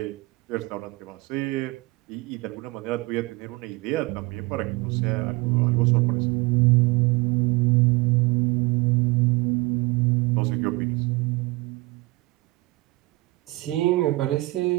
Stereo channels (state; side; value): quieter; left; 22.3 dB